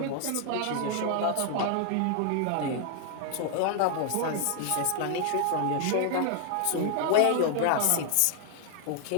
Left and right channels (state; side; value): different; both; correlation 0.00